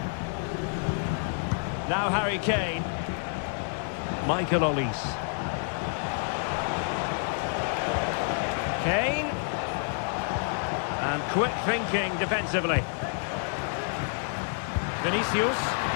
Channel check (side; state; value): right; silent; 59 dB below the other